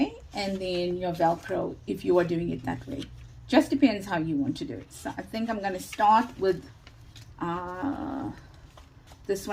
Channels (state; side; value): identical; both; correlation 1.00